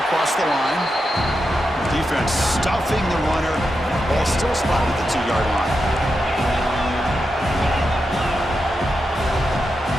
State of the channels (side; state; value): both; normal; correlation 0.87